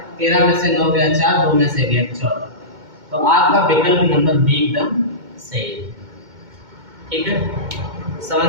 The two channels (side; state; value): left; late; 2.2 ms